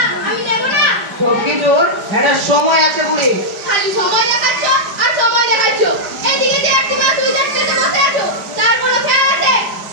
আমি দেব না? সবকিছুর একটা সময় আছে বুড়ি। খালি সময় দেখাচ্ছ আর সময় দেখাচ্ছ। এদিকে যে একটি মা তুমি দেখতে বসে আছো, তার কোনো খেয়াল আছে?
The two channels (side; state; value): left; late; 4.9 ms